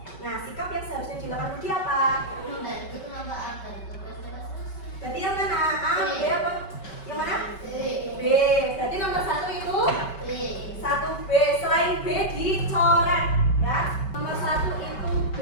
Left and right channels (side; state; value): right; late; 5.2 ms